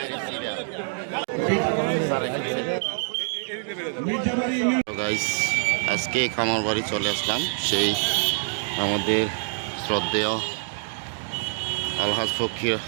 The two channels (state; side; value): silent; left; digital silence